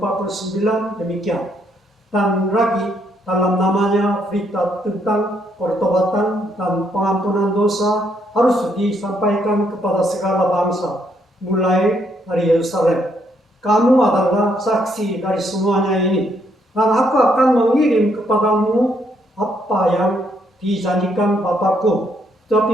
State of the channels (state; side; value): normal; both; correlation 0.73